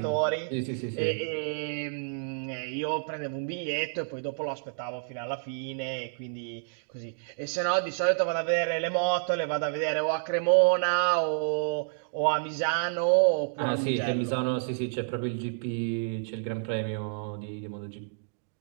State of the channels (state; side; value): silent; left; digital silence